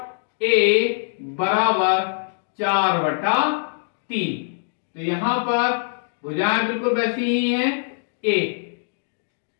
A बराबर 4/3। तो यहां पर भुजाएं बिल्कुल वैसी ही हैं, A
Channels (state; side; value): silent; right; digital silence